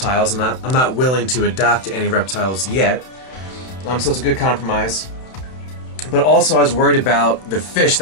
and I'm not willing to adopt any reptiles yet. So it's a good compromise. But also I was worried about the fish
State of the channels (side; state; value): right; late; 31 ms